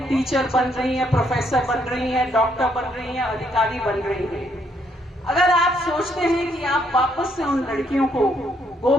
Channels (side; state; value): both; normal; correlation 0.72